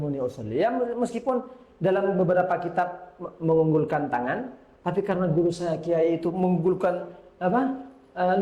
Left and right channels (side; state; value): both; identical; correlation 1.00